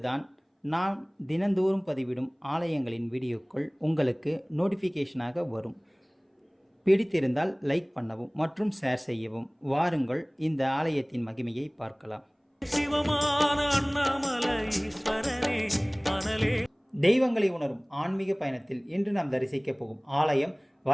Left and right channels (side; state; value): both; identical; correlation 1.00